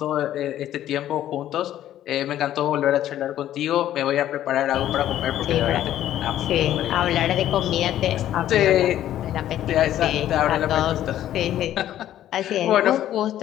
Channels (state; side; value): quieter; right; 12.2 dB